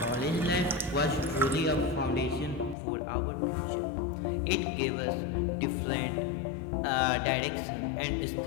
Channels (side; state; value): right; drops out; at 2.8 s